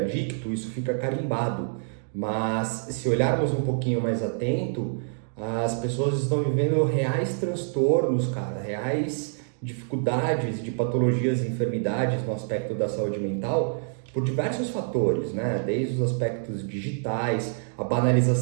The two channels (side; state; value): left; silent; digital silence